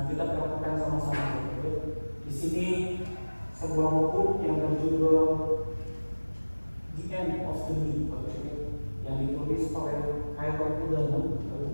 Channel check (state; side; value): inverted; both; correlation -1.00